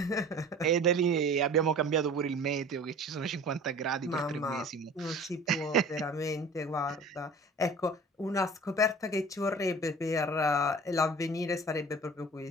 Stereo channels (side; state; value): both; normal; correlation 0.42